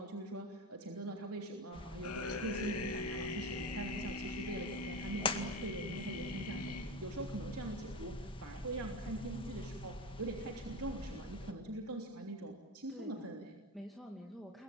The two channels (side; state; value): both; normal; correlation 0.23